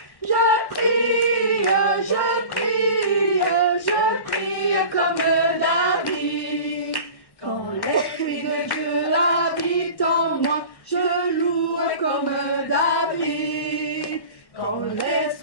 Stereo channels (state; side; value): late; right; 1.1 ms